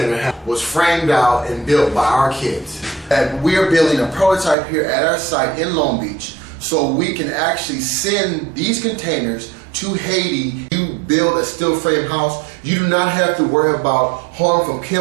was framed out and built by our kids. And we're building a prototype here at our site in Long Beach so we can actually send these containers to Haiti. You build a steel frame house, you do not have to worry about harm from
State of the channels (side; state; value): left; drops out; at 4.5 s